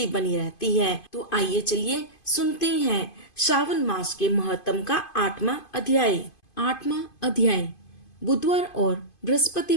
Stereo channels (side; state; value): right; late; 2.5 ms